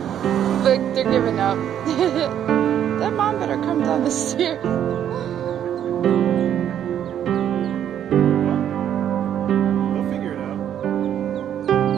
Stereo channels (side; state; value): left; quieter; 10.0 dB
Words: Look, they're giving up. That mom better come down the stairs. They'll figure it out.